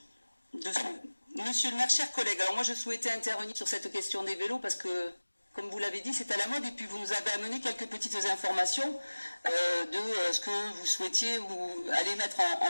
Monsieur le maire, chers collègues, alors moi je souhaitais intervenir sur cette question des vélos parce que, comme vous l'avez dit, c'est à la mode et puis vous nous avez amené quelques petites informations de ce que vous souhaitiez ou aller mettre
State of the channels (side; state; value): both; inverted; correlation -1.00